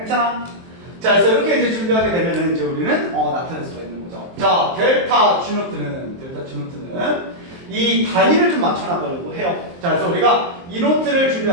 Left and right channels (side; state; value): left; late; 23 ms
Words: 자, 그래서 이렇게 이제 준비하게 되면은 이제 우리는 나타낼 수가 있는 거죠. 자, 델타 G노트는 이 단위를 좀 맞춰 나가려고 해요. 자, 그래서 우리가 이 노트를